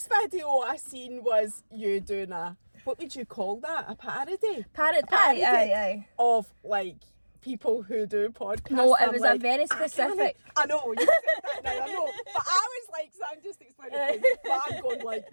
video I seen was you doing what would you call that? A parody? Parody. Aye. Of like people who do podcasts. No, it I'm was like, a very I can't- specific. I know, you said that now, I know. But I was like, so I'm just explaining things. But I'm going like,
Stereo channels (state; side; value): inverted; both; correlation -1.00